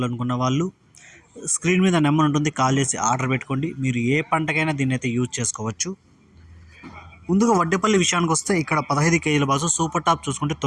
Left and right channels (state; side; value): identical; both; correlation 1.00